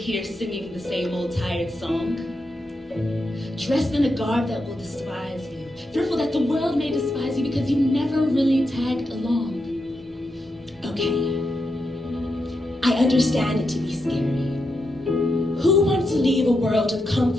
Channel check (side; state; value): both; normal; correlation 0.85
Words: singing the same old tired song, dressed in a garb that will despise you, fearful that the world may despise you because you never really tagged along. Okay, I understand it to be scary. Who wants to leave a world of